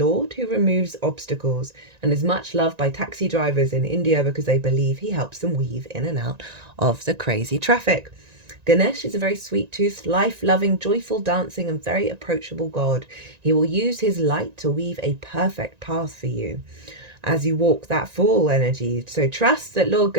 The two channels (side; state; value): left; late; 1.9 ms